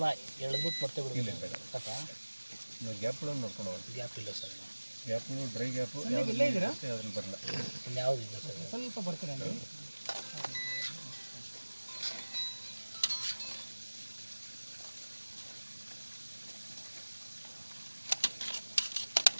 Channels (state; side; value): inverted; both; correlation -1.00